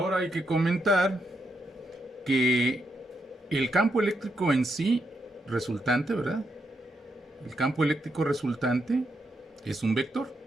hay que comentar que el campo eléctrico en sí resultante, ¿verdad? El campo eléctrico resultante es un vector.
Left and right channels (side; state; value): both; normal; correlation 0.81